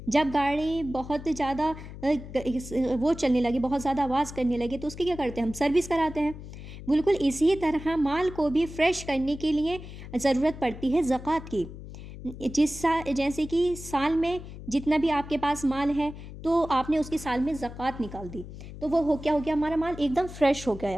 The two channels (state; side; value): noise; left; hum, 13 dB below the sound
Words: जब गाड़ी बहुत ज़्यादा वो चलने लगी, बहुत ज़्यादा आवाज़ करने लगी, तो उसकी क्या करते हैं, हम सर्विस कराते हैं। बिल्कुल इसी तरह माल को भी फ्रेश करने के लिए ज़रूरत पड़ती है ज़कात की। जैसे कि साल में जितना भी आपके पास माल है, तो आपने उसकी साल में ज़कात निकाल दी, तो वो क्या हो गया, हमारा माल एकदम फ्रेश हो